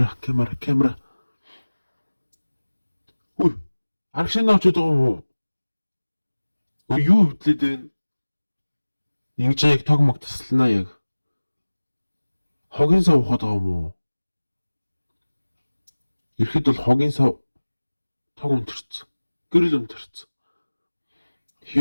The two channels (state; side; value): inverted; both; correlation -1.00